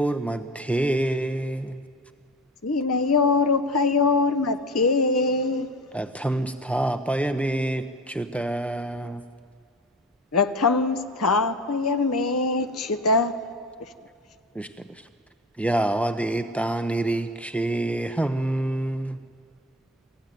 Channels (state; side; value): normal; both; correlation 0.31